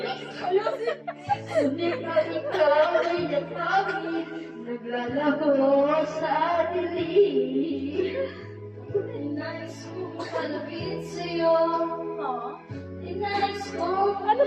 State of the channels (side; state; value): both; identical; correlation 1.00